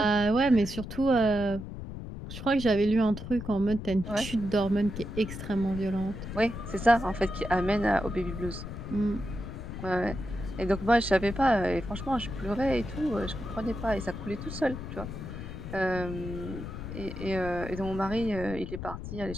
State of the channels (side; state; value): left; noise; rumble, 8 dB below the sound